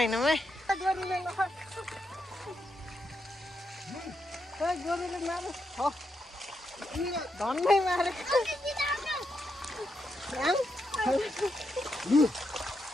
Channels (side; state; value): both; normal; correlation 0.82